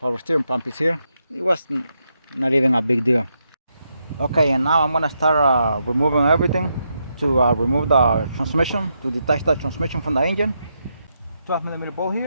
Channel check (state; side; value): inverted; both; correlation -0.82